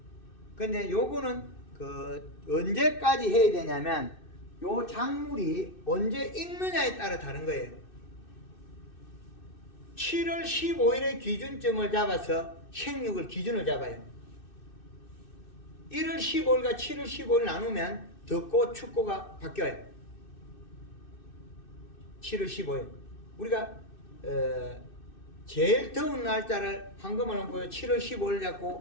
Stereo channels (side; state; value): right; late; 2.6 ms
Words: 근데 요거는 그 언제까지 해야 되냐면 요 작물이 언제 익느냐에 따라 다른 거예요. 7월 15일의 기준점을 잡아서 생육을 기준을 잡아요. 1월 15일과 7월 15일 나누면 덥고 춥고가 바뀌어요. 7월 15일. 우리가 제일 더운 날짜를 황금을 보여 7월 15일